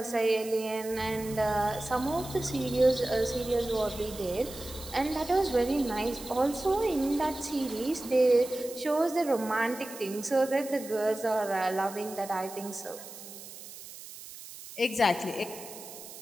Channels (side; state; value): right; noise; hiss, 14 dB below the sound